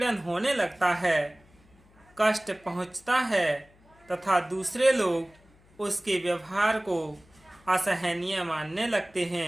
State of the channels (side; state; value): left; noise; hum, 29 dB below the sound